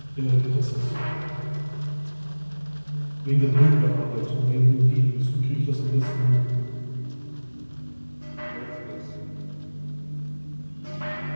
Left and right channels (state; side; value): inverted; both; correlation -1.00